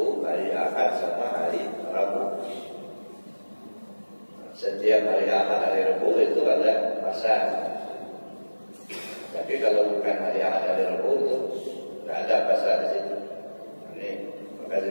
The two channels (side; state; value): both; inverted; correlation -1.00